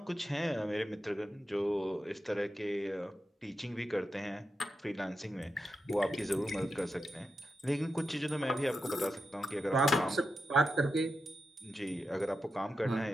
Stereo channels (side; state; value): both; normal; correlation 0.88